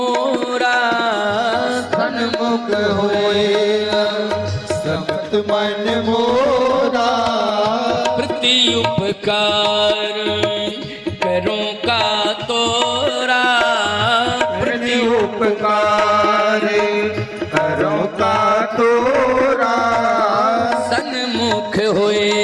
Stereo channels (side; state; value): both; identical; correlation 1.00